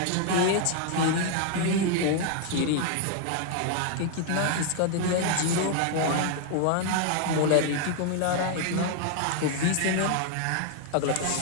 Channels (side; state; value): both; different; correlation 0.00